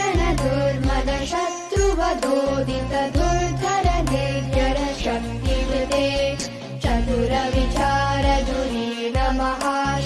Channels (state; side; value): identical; both; correlation 1.00